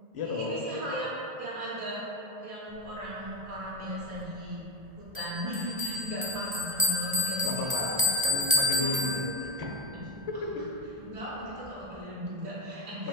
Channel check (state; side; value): late; left; 1.3 ms